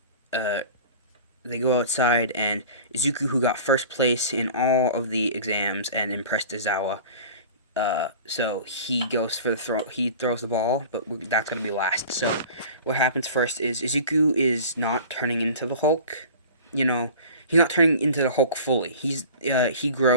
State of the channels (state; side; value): inverted; both; correlation -0.40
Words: They go outside, and Izuku, who got first place in all of the exams and impressed Aizawa, so he goes for the throw. He throws the ball, but that's gonna be last. So what happens first is Izuku is not turning into the Hulk. He's not turning into the Hulk fully. He